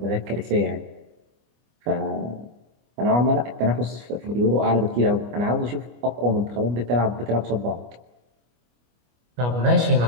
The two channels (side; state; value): left; late; 25 ms